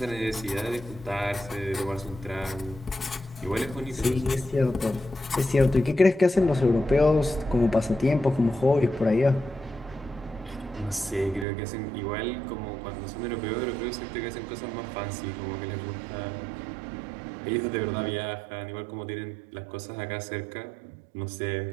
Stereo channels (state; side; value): drops out; left; at 11.5 s